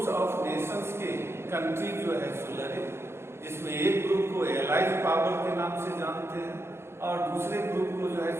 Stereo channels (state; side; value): late; left; 0.12 ms